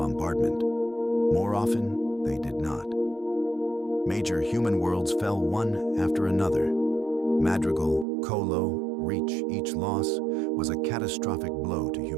More often, they did not. Major human worlds fell one after another. Madrigal, Colo, Reach, each loss was a catastrophic blow to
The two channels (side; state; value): left; drops out; at 8.1 s